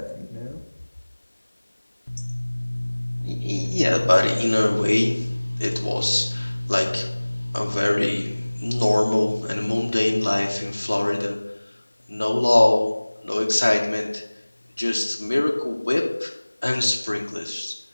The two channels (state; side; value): inverted; both; correlation -1.00